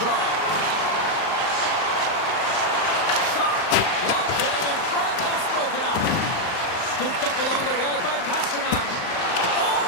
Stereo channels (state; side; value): late; right; 38 ms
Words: Shot! Locked in front, that's broken up. Scooped up along the wall by Pasternak.